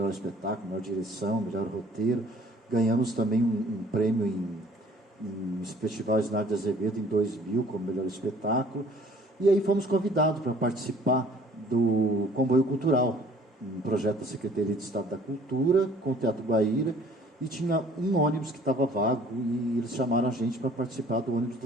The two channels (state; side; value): normal; both; correlation 0.54